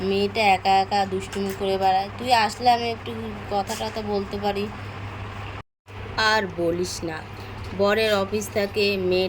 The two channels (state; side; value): identical; both; correlation 1.00